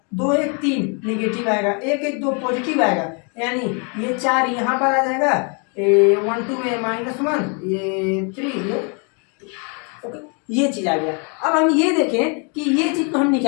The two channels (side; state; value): right; quieter; 36.3 dB